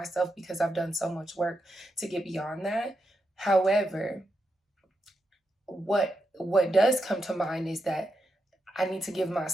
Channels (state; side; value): normal; both; correlation 0.85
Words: because I've done so much work to get beyond that. However, what does come to mind is that I need to give